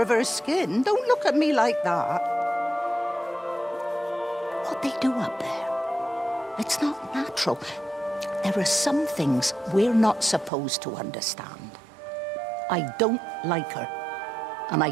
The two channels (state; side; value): drops out; left; at 10.5 s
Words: her skin. Don't look at me like that. What they do up there, it's not natural. There are some things we're not supposed to understand. I don't like her, and